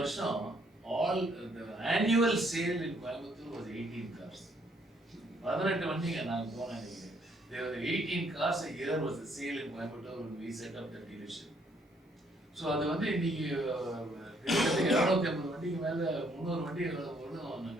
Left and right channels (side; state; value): both; normal; correlation 0.68